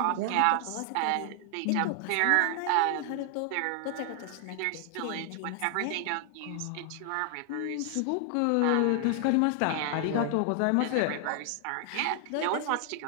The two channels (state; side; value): different; both; correlation 0.00